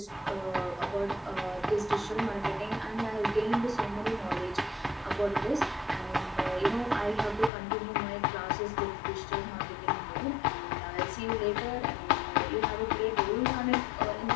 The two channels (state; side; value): drops out; right; at 7.5 s